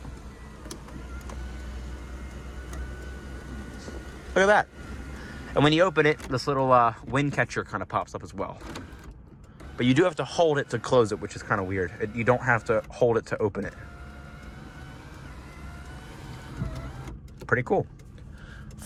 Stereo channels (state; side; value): identical; both; correlation 1.00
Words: Look at that. And when you open it, this little wind catcher kind of pops up as well. But you do have to hold it to close it, which is kind of weird. You don't have to hold it to open it. Pretty cool.